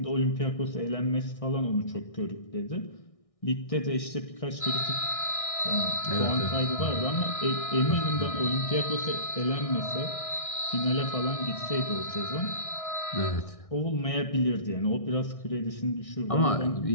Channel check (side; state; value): right; late; 1.6 ms